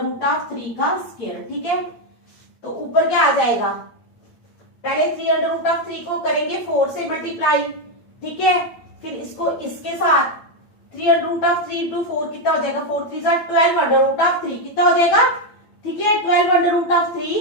root of 3 का स्क्वायर, ठीक है। तो ऊपर क्या आ जाएगा, पहले 3 अंडर रूट ऑफ 3 को करेंगे 4 से मल्टीप्लाई, ठीक है, फिर इसको इसके साथ 3 अंडर रूट ऑफ 3 इंटू 4 कितना हो जाएगा, 4 3 12 अंडर रूट ऑफ 3 कितना हो जाएगा, ठीक है, 12 under root of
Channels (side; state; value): right; late; 8.8 ms